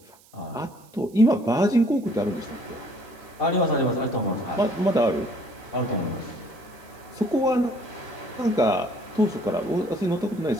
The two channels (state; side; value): noise; right; hiss, 27 dB below the sound